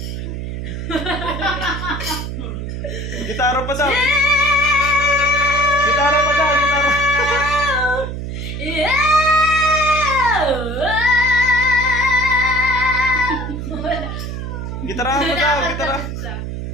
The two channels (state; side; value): noise; right; hum, 6 dB below the sound